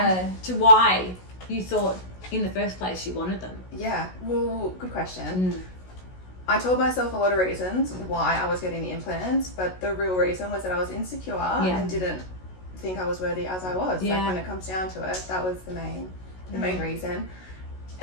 to why you thought in the first place you wanted them. Yeah, well, good question. I told myself a lot of reasons why I was getting the implants, but the real reason was that I was insecure and didn't think I was worthy as I was. Like when it comes down to it, that was the main reason.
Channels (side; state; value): right; late; 16 ms